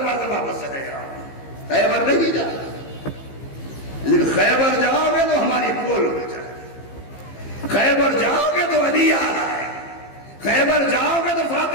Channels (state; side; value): late; right; 15 ms